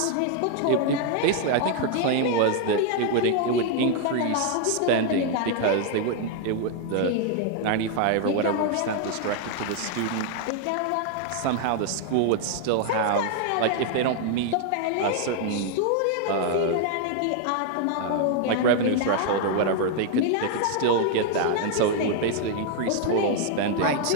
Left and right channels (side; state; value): both; different; correlation 0.00